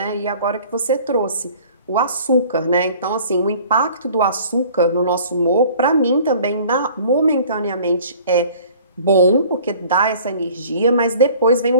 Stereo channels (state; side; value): inverted; both; correlation -0.49